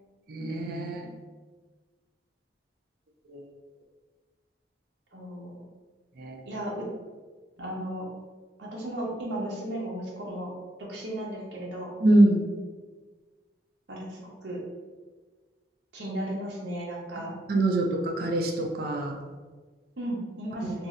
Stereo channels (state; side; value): normal; both; correlation 0.77